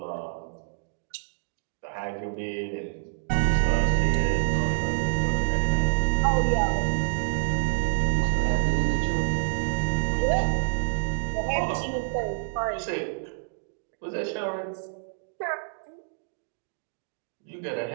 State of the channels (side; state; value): left; silent; digital silence